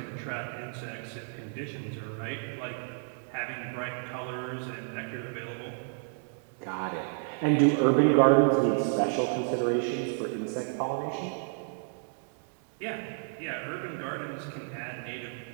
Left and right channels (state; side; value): silent; left; 57 dB below the other